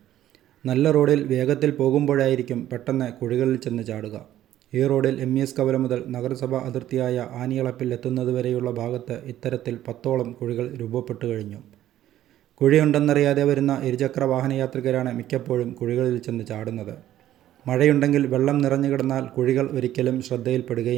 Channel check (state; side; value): quieter; left; 12.7 dB